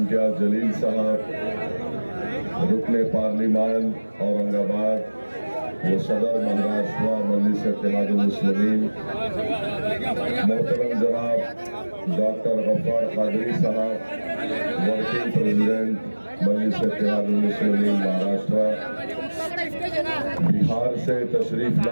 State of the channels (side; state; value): both; inverted; correlation -1.00